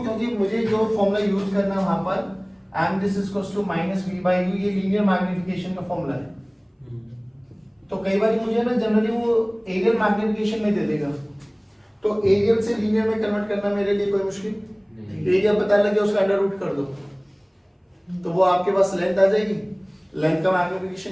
क्योंकि मुझे जो फॉर्मूला यूज करना है वहां पर m this is equals to -v/u, ये लीनियर मैग्निफिकेशन का फॉर्मूला है। तो कई बार मुझे ना जनरली वो एरियल मैग्निफिकेशन में दे देगा, तो एरियल से लीनियर में कन्वर्ट करना मेरे लिए कोई मुश्किल नहीं। एरिया पता लगे उसका अंडर रूट कर दो, तो वो आपके पास लेंथ आ जाएगी। लेंथ का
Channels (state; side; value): identical; both; correlation 1.00